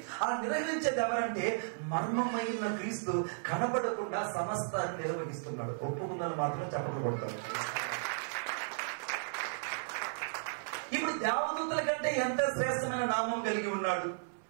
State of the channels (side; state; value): left; silent; 55 dB below the other